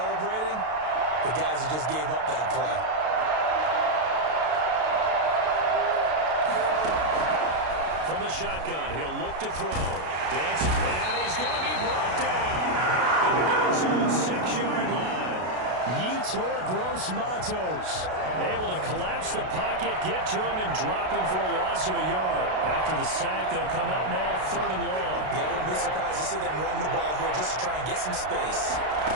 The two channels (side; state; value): left; late; 32 ms